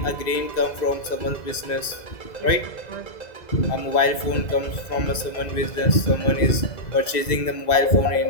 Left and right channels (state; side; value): late; right; 2.0 ms